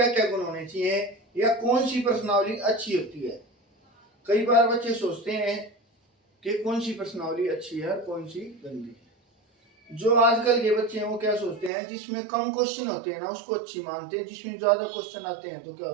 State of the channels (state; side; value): drops out; left; at 11.7 s